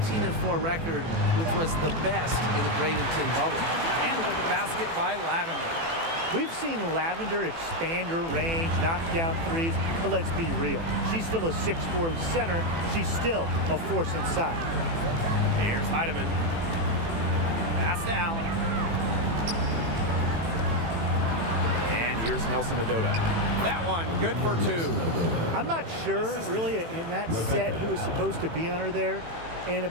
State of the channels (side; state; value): left; late; 18 ms